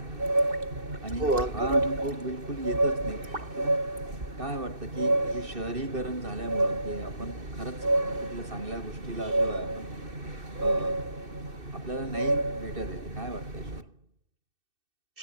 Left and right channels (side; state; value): left; late; 2.6 ms